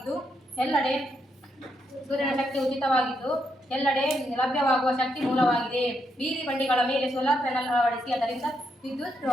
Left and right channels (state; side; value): normal; both; correlation 0.79